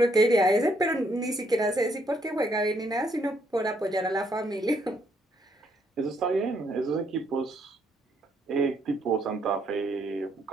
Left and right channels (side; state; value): both; normal; correlation 0.72